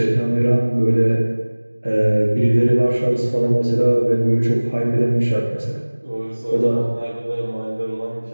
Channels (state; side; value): inverted; both; correlation -1.00